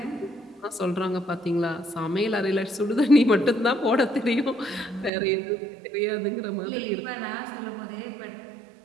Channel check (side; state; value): left; drops out; at 5.1 s